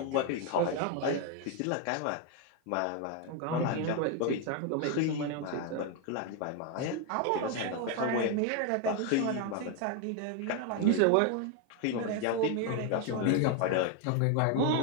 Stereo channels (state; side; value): different; both; correlation 0.01